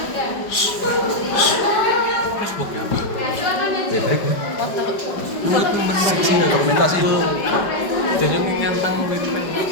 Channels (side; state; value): right; late; 5.1 ms